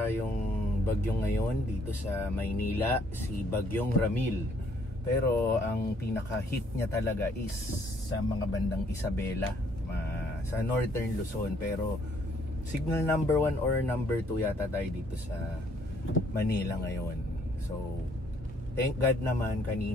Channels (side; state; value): both; normal; correlation 0.65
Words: bagyo ngayon dito sa Maynila, si Bagyong Ramil. Pero ang pinaka-hit niya talaga is sa mga bandang Isabela, sa Northern Luzon. Pero signal number 1 or number 2 yata tayo dito sa Manila ngayon. So thank God naman